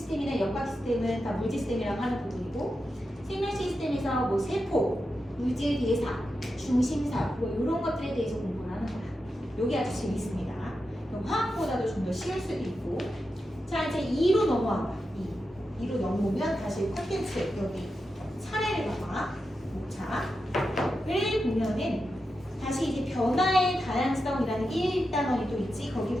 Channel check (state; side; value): normal; both; correlation 0.89